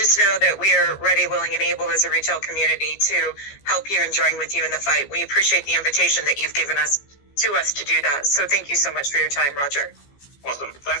know that we are ready, willing, and able as a retail community to help you and join with you in the fight. We appreciate the invitation that you've given us to do that. So thank you so much for your time, Roger. Awesome.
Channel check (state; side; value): late; right; 15 ms